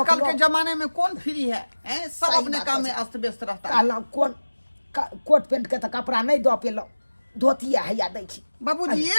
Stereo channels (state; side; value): inverted; both; correlation -1.00